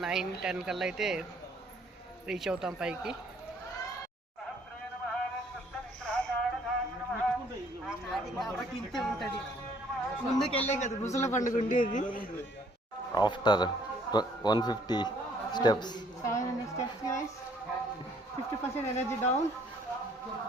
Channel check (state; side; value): normal; both; correlation 0.62